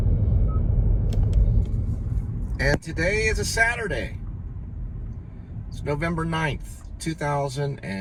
And today is a Saturday. It's November 9th,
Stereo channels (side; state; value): both; identical; correlation 1.00